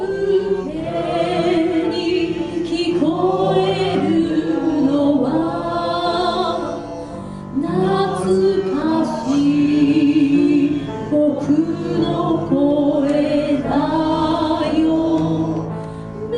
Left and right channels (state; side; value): identical; both; correlation 1.00